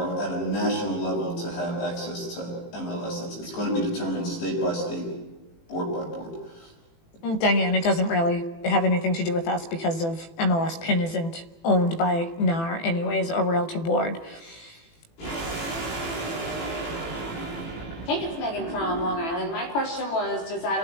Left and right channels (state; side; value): late; right; 18 ms